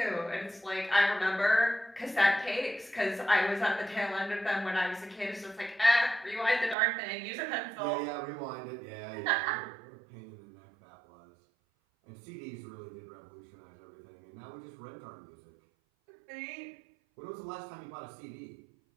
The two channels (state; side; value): drops out; left; at 6.8 s